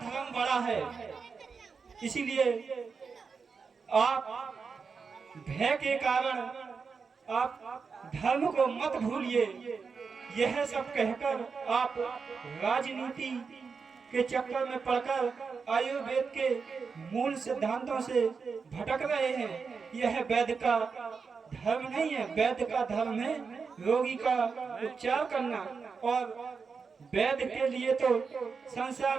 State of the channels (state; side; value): quieter; left; 5.3 dB